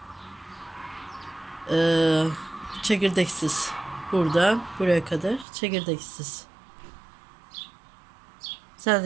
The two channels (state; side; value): drops out; left; at 5.5 s